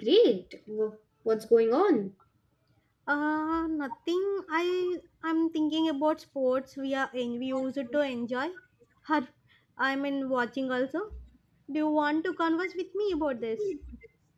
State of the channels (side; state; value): both; identical; correlation 1.00